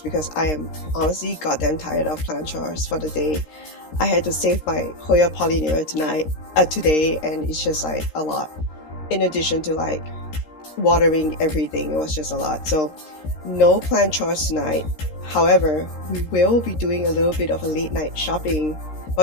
because I am honestly goddamn tired of plant chores for the day. I had to save my Hoya pollinera today, and it's just like a lot. In addition to like watering everything, it was just a lot. So no plant chores tonight. However, we will be doing a little bit of a late night shopping.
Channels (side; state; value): right; late; 13 ms